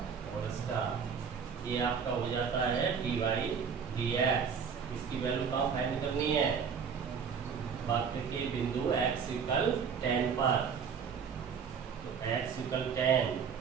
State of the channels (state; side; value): quieter; left; 6.5 dB